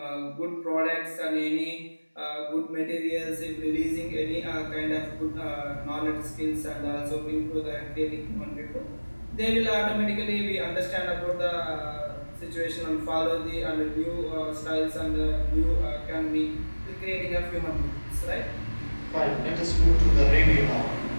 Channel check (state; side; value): inverted; both; correlation -1.00